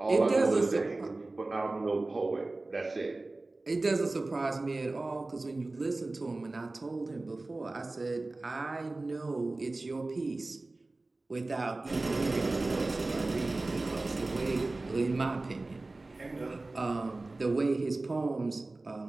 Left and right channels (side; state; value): left; quieter; 3.1 dB